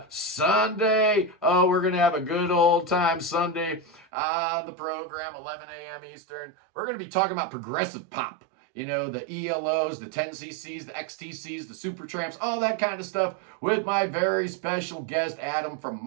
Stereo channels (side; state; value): left; drops out; at 4.0 s